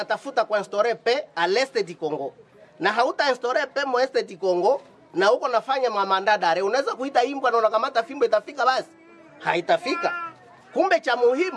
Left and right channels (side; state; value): both; identical; correlation 1.00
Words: kuinstaurer paix à l'est du Congo. Na hauta instaurer paix mo est du Congo na uko nafanya mandat d'arrêt, unaweza kuita imbwa na unakamata fimbo itafika basi? Haitafika. Kumbe cha